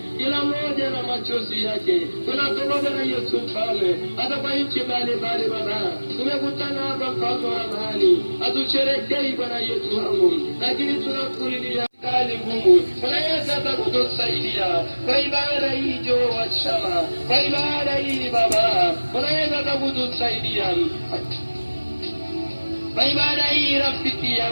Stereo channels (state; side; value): inverted; both; correlation -1.00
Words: Ibada hii rafiki